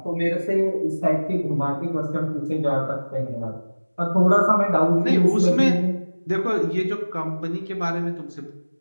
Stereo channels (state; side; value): inverted; both; correlation -1.00